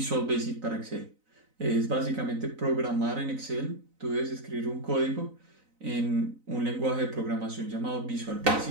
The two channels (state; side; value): late; left; 4.0 ms